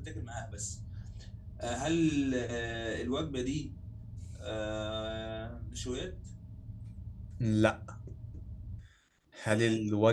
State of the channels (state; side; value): identical; both; correlation 1.00